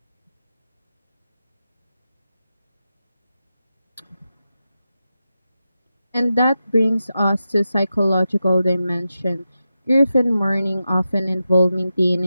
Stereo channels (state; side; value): inverted; both; correlation -0.91